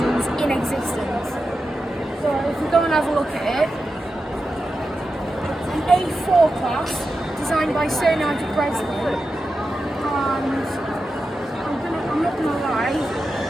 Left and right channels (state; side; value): normal; both; correlation 0.90